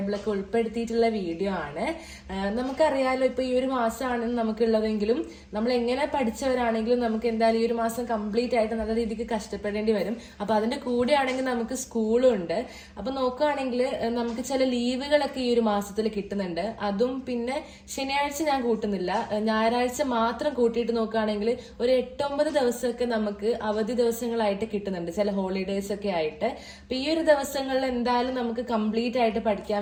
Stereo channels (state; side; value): identical; both; correlation 1.00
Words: ഉൾപ്പെടുത്തിയിട്ടുള്ള വീഡിയോ ആണ്. നമുക്കറിയാലോ, ഇപ്പോൾ ഈ ഒരു മാസമാണ് നമുക്കുള്ളതെങ്കിലും നമ്മൾ എങ്ങനെ പഠിച്ചവരാണെങ്കിലും നമുക്ക് എന്തായാലും ഈ ഒരു മാസം കംപ്ലീറ്റ് ആയിട്ട് നല്ല രീതിക്ക് കഷ്ടപ്പെടേണ്ടി വരും. അപ്പോൾ അതിൻ്റെ കൂടെ ആണെങ്കിൽ നമുക്ക് സ്കൂളും ഉണ്ട്. അപ്പോൾ നോക്കുകയാണെങ്കിൽ നമുക്ക് ചില ലീവുകളൊക്കെ ഈ ഒരു മാസത്തിൽ കിട്ടുന്നുണ്ട്. അതും പിന്നെ ശനിയാഴ്ച ഞാൻ കൂട്ടുന്നില്ല, ഞായറാഴ്ച മാത്രം കൂട്ടിയിട്ട് നോക്കുകയാണെങ്കിൽ ഒരു 8-9 ദിവസമൊക്കെ നമുക്ക് അവധി ദിവസങ്ങളായിട്ട് കിട്ടുന്നുണ്ട്, ചില ഹോളിഡേയ്സ് ഒക്കെ ആയിട്ട്. അപ്പൊ ഈ ഒരു ദിവസങ്ങളിൽ എന്തായാലും നമുക്ക് കംപ്ലീറ്റ് ആയിട്ട്